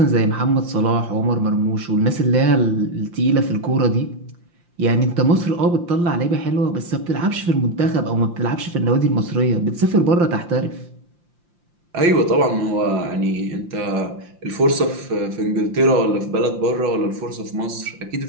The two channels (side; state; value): left; late; 5.7 ms